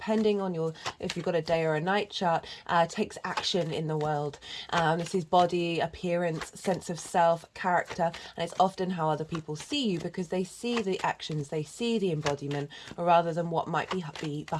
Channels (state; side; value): identical; both; correlation 1.00